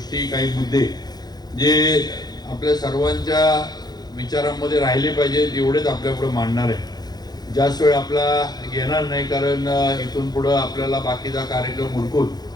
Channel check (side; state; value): right; late; 0.19 ms